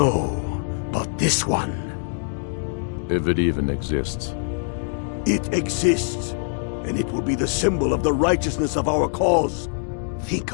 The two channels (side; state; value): right; silent; digital silence